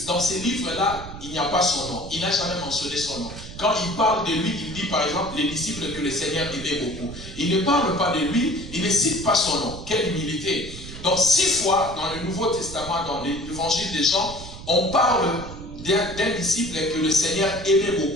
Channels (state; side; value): noise; right; rumble, 12 dB below the sound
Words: dans ces livres-là, il n'y a pas son nom. Il n'a jamais mentionné son nom. Quand il parle de lui, il dit par exemple les disciples que le Seigneur aimait beaucoup. Il ne parle pas de lui, il ne cite pas son nom. Quelle humilité. Donc 6 fois dans le Nouveau Testament, dans l'évangile de Jean, on parle d'un disciple que le Seigneur aimait